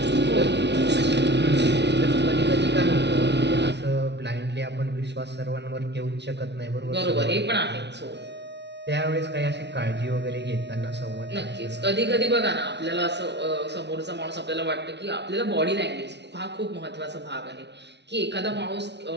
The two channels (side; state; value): left; late; 0.50 ms